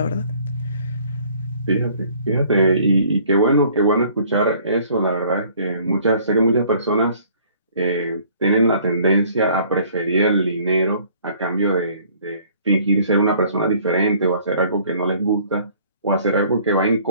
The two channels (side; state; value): both; inverted; correlation -0.56